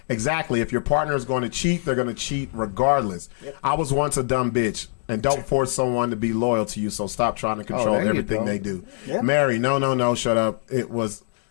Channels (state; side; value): silent; right; 63 dB below the other